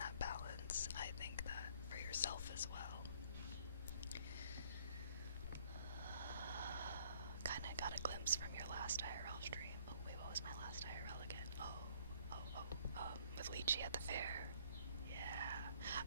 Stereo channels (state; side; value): inverted; both; correlation -0.60